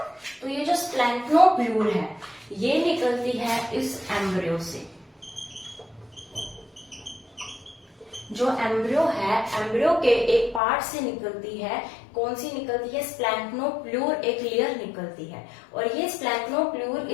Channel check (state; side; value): drops out; right; at 10.6 s